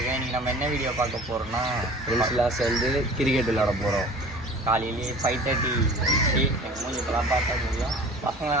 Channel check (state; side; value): normal; both; correlation 0.43